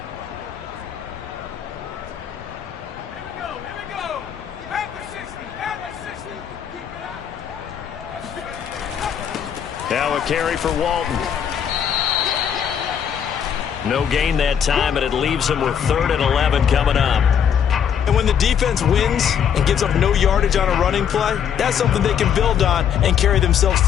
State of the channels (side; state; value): right; quieter; 8.3 dB